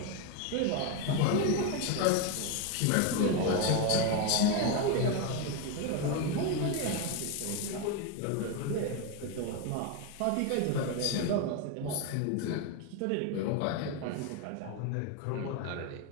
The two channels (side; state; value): both; different; correlation 0.02